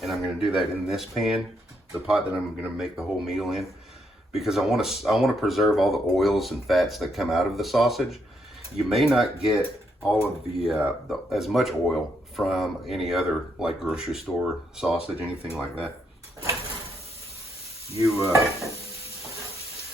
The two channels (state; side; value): normal; both; correlation 0.77